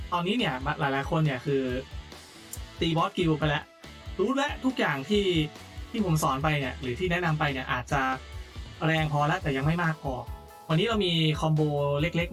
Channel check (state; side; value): identical; both; correlation 1.00